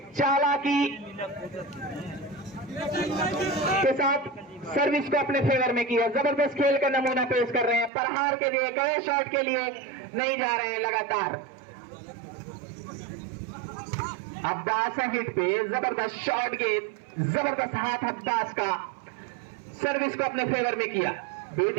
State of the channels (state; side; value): drops out; left; at 7.9 s